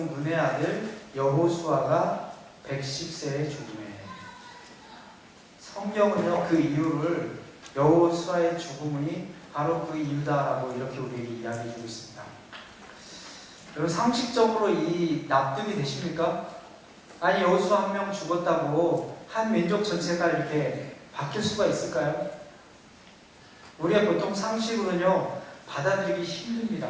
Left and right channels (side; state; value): both; identical; correlation 1.00